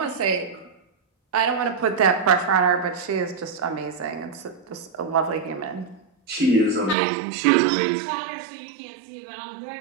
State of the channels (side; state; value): left; drops out; at 7.0 s